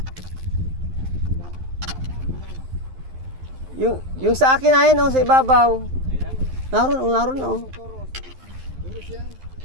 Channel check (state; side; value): late; left; 11 ms